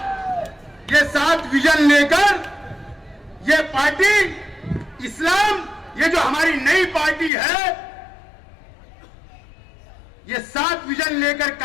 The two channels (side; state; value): right; drops out; at 7.3 s